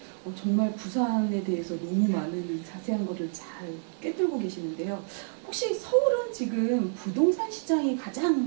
정말 부산에 대해서 너무 많은 자세한 거를 잘 꿰뚫고 계시는데요. 혹시 서울은 지금 부동산 시장이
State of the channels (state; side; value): silent; left; digital silence